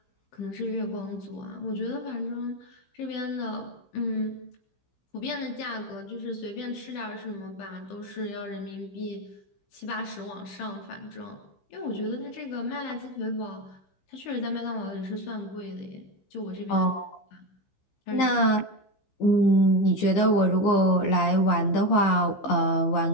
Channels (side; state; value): right; late; 15 ms